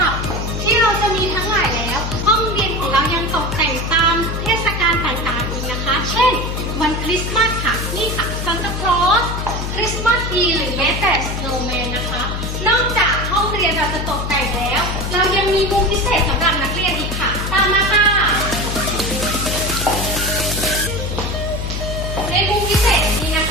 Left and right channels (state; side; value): noise; left; hum, 4 dB below the sound